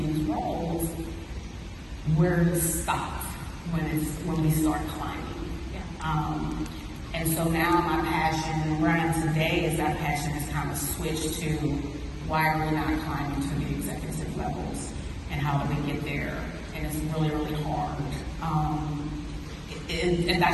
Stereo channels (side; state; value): both; identical; correlation 1.00